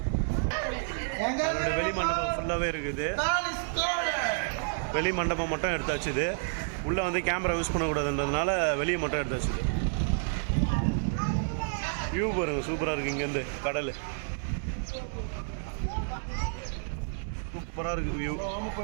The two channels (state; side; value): silent; left; 58 dB below the other